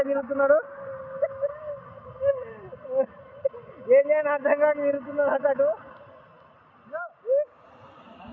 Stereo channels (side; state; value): both; identical; correlation 1.00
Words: తిరుగుతున్నాడు. ఏం చేయని అర్థం కాక తిరుగుతున్నాడు అతడు.